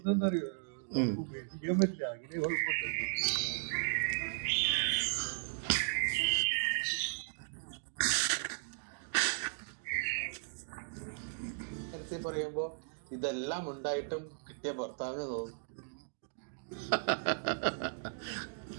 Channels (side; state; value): left; silent; digital silence